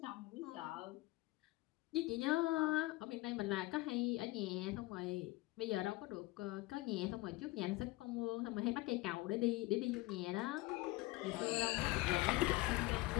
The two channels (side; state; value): right; quieter; 20.4 dB